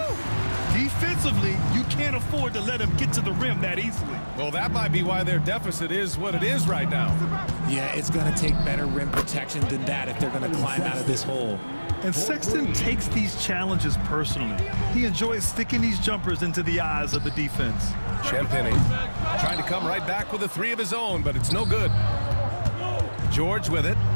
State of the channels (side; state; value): both; inverted; correlation -1.00